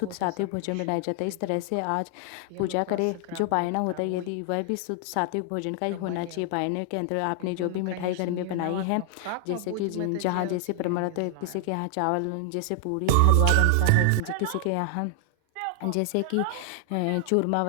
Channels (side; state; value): both; different; correlation 0.00